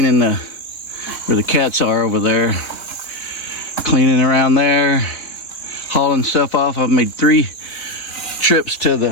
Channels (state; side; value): late; right; 3.7 ms